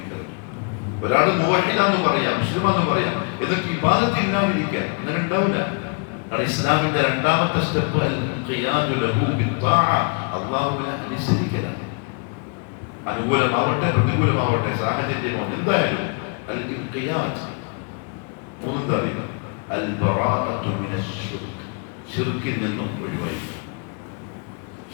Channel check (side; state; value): right; quieter; 38.1 dB